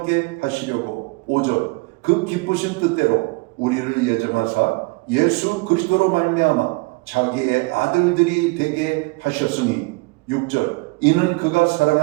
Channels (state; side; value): quieter; left; 26.9 dB